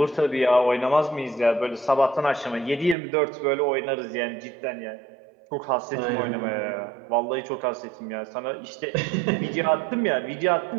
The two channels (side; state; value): left; drops out; at 3.0 s